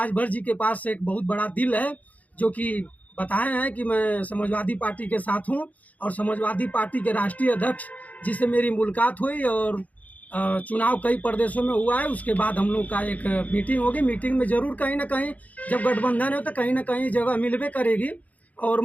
जी के पास एक बहुत बड़ा दिल है, जो कि बताए हैं कि मैं समाजवादी पार्टी के साथ हूँ और समाजवादी पार्टी के राष्ट्रीय अध्यक्ष जिससे मेरी मुलाकात हुई और चुनाव कई प्रदेशों में हुआ है। उसके बाद हम लोग का एक मीटिंग होगी। मीटिंग में ज़रूर कहीं ना कहीं जब गठबंधन है तो कहीं ना कहीं जगह मिलबे करेगी। और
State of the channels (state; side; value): late; right; 0.074 ms